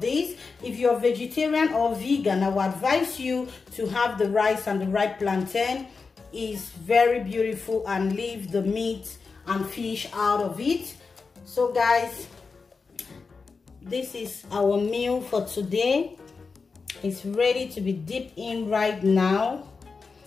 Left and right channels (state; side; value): quieter; right; 4.7 dB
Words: these. If you're vegetarian or vegan, I would advise you to have the rice and the ripe plantain. It's very beautiful, and leave the meat and fish out of it. So guys, this is our meal for today. It's ready to be dipped in right now.